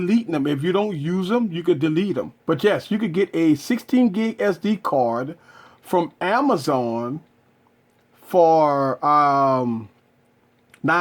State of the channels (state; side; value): identical; both; correlation 1.00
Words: them. If you don't use them, you could delete them. But yes, you could get a 16 gig SD card from Amazon for